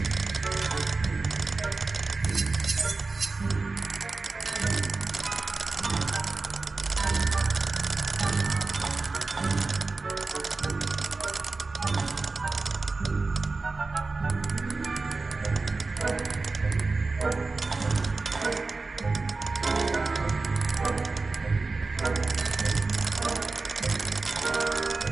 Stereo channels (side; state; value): left; quieter; 3.8 dB